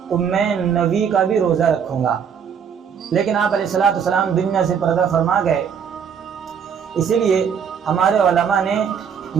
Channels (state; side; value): quieter; left; 7.4 dB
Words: تو میں 9 کا بھی روزہ رکھوں گا۔ لیکن آپ علیہ السلام دنیا سے پردہ فرما گئے، اسی لیے ہمارے علماء نے